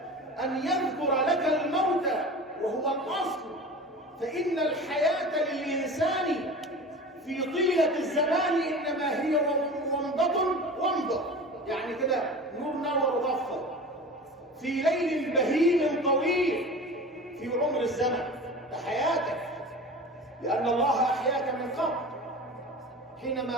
أن يذكر لك الموت وهو الأصل. فإن الحياة للإنسان في طيلة الزمان إنما هي ومضة، يعني كده نور نور ضفة في ليل بهيم طويل في عمر الزمن. ده حياتك، لأن الله أحياك من قبل.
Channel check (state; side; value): normal; both; correlation 0.35